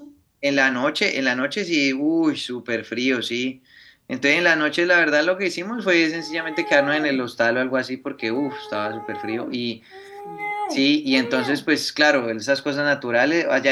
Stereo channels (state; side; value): identical; both; correlation 1.00